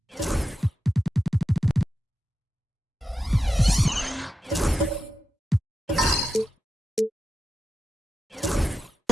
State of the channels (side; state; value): both; normal; correlation 0.90